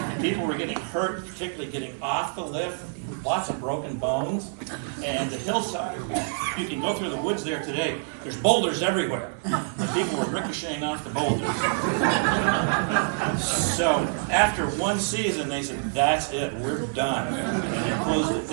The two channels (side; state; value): left; silent; digital silence